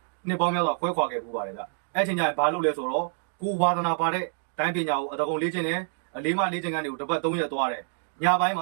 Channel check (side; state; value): left; silent; 60 dB below the other